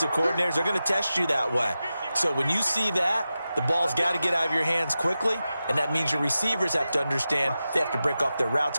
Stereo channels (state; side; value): inverted; both; correlation -0.93